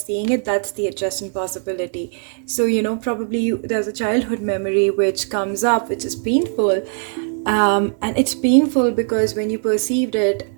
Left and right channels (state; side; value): silent; left; digital silence